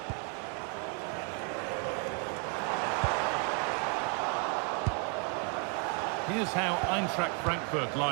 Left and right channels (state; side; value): quieter; left; 35.2 dB